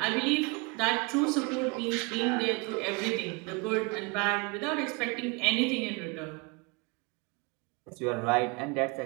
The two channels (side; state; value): left; quieter; 28.3 dB